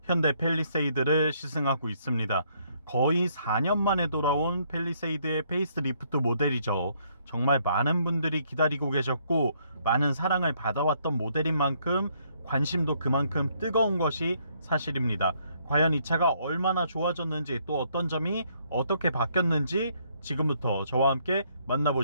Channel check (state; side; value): inverted; both; correlation -0.69